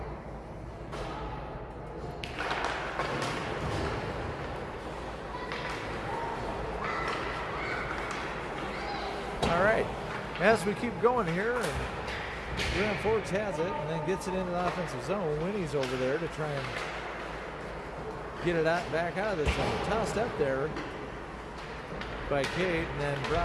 As we keep going here, and Grand Forks has it and then gets it into the offensive zone. Winnie's over there to try and get it out, back out of the zone. Tossed up there by Kate and then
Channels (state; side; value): identical; both; correlation 1.00